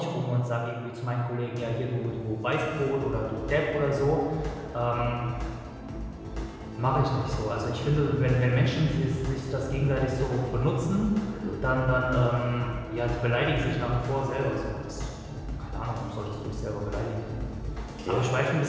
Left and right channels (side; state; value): both; identical; correlation 1.00